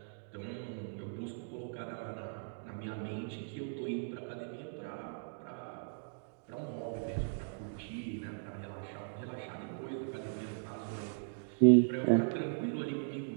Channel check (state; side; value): silent; left; digital silence